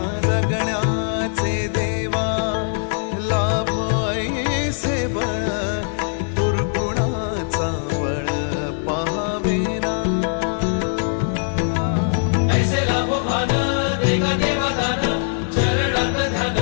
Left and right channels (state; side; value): silent; right; digital silence